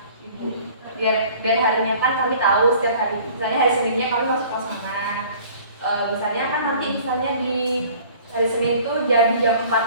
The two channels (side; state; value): both; inverted; correlation -0.50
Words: ibu. Biar harinya kan kami tahu setiap hari. Misalnya hari Seninnya kami masuk kelas mana. Misalnya kan nanti misalnya di hari Senin itu jadi jam